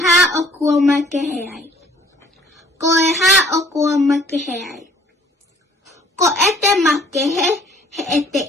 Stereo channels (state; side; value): normal; both; correlation 0.57